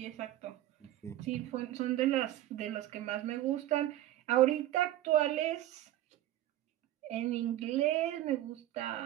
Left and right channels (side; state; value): left; quieter; 13.9 dB